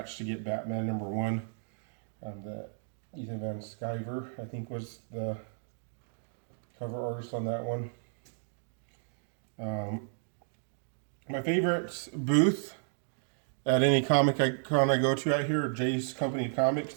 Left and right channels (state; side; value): silent; left; digital silence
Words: to get Batman number 1. Ethan Van Sciver, I think, was the cover artist on that one. My favorite booth at any comic con I go to out here, Jay's Company Comics.